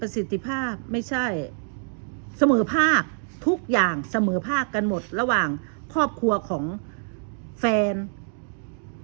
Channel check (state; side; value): silent; left; digital silence